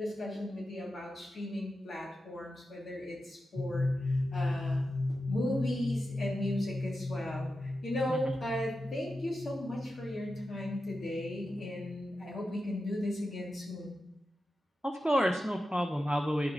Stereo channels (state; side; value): normal; both; correlation 0.91